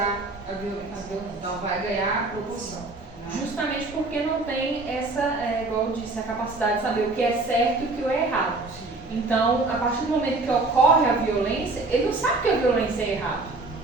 a violência. Então, vai ganhar proporção. Né? Justamente porque não tem essa, igual eu disse, a capacidade de saber o que é certo e o que é errado. Então, a partir do momento que ocorre a violência, ele não sabe que a violência é errado.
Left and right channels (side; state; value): left; quieter; 3.3 dB